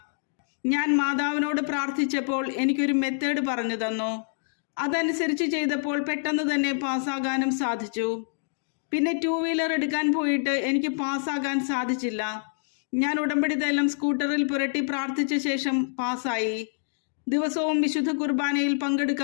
ഞാൻ മാതാവിനോട് പ്രാർത്ഥിച്ചപ്പോൾ എനിക്കൊരു മെത്തേഡ് പറഞ്ഞു തന്നു. അതനുസരിച്ച് ചെയ്തപ്പോൾ പെട്ടെന്ന് തന്നെ പാസ്സാകാനും സാധിച്ചു. പിന്നെ 2 വീലർ എടുക്കാൻ പോയിട്ട് എനിക്ക് പാസ്സാകാൻ സാധിച്ചില്ല. ഞാൻ ഉടമ്പടി തൈലം സ്കൂട്ടറിൽ പുരട്ടി പ്രാർത്ഥിച്ച ശേഷം പാസ്സായി. ദിവസവും വിശുദ്ധ കുർബാനയിൽ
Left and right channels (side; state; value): right; silent; digital silence